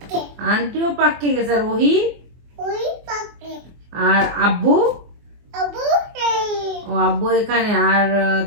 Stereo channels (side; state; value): left; late; 24 ms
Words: আন্টিও পাক্কে গেছে। আর ওহি? আর আব্বু? ও আব্বু এখানে। আর